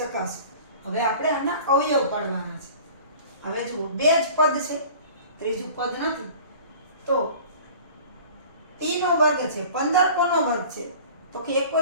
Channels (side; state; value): both; inverted; correlation -0.44